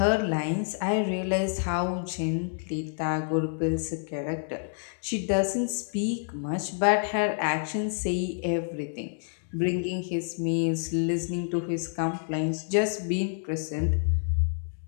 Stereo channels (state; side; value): silent; right; digital silence